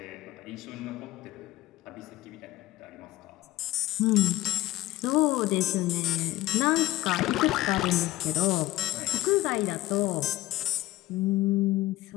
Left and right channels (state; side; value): quieter; right; 16.9 dB